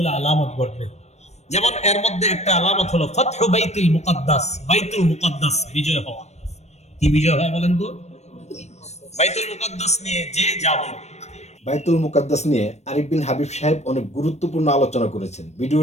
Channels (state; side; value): late; right; 0.32 ms